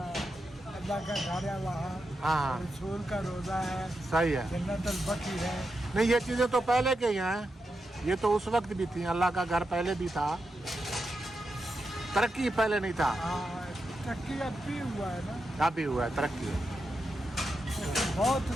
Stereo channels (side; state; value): both; normal; correlation 0.87